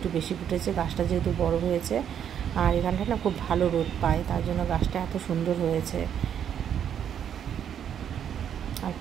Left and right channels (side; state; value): left; quieter; 9.0 dB